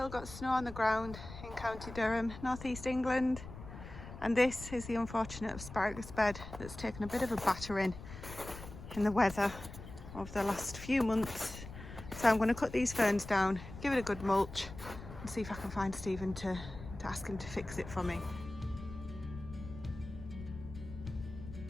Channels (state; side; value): noise; left; rumble, 13 dB below the sound